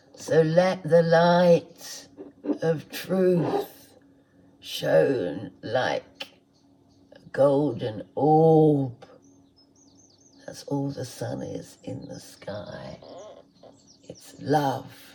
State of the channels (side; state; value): both; identical; correlation 1.00